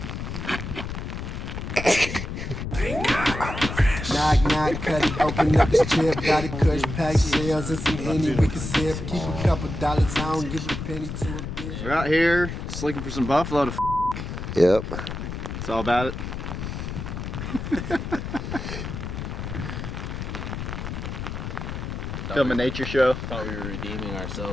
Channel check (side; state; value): left; noise; rumble, 6 dB below the sound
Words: Knock, knock, cut it, open up this chip. Got it, kush, pack shells and some Henny we can sip. Keep a couple dollars, I don't give a penny to a bitch. We're out here just looking for some buffalo to Yep. It's all about it. Film a nature show. Thought we were redeeming